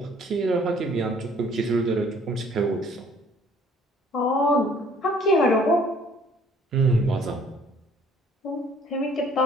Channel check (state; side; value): normal; both; correlation 0.58